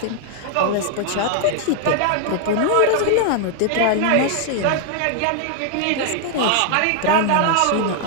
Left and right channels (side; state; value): both; different; correlation 0.00